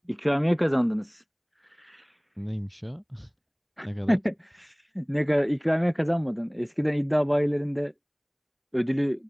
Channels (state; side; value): identical; both; correlation 1.00